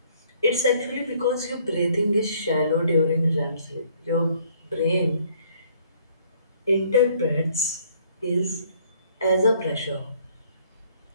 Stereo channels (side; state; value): both; inverted; correlation -0.62